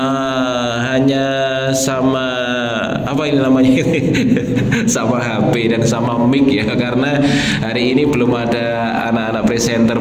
hanya sama apa ini namanya sama HP dan sama mic ya, karena hari ini belum ada anak-anak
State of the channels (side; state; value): both; identical; correlation 1.00